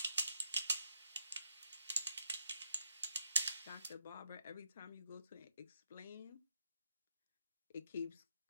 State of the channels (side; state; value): both; inverted; correlation -0.79